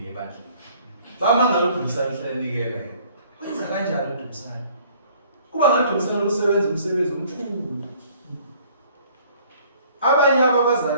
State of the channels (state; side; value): inverted; both; correlation -0.56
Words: a battle? Bama ngaludumsana hlalike. Wenza kanjani udumsana? Kuba ngathi udumsana lusebenza umsebenzi omkhulu. Abanye